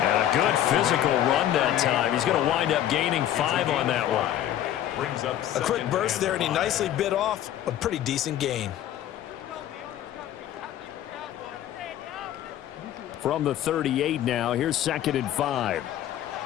a good physical run that time. He's going to wind up gaining 5 on that one. A quick burst there, and he nicely bit off a pretty decent gain. From the 38 now, here's 2nd and 5.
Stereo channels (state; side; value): quieter; right; 11.8 dB